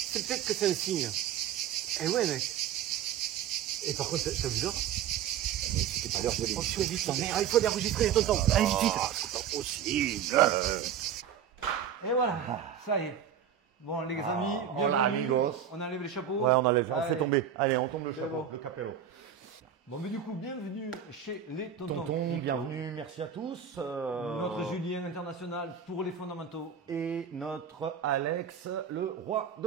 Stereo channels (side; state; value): left; quieter; 8.5 dB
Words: peut-être que c'est un signe. Eh ouais, mec. Et par contre, t'as vu ça? C'est pas l'heure de l'émission. Il faut enregistrer, tonton. Allez, vite, vite. C'est pas possible. Et voilà, ça y est. Bon, les amis, bienvenue. On enlève les chapeaux. Ouais, on enlève, on fait tomber. Allez, on tombe le chapeau, bon. le capello. Bon, mais du coup, bienvenue chez les tontons crypto. Bienvenue, merci à tous. Notre Julien international pour les fondamentaux. Et notre Alex, le roi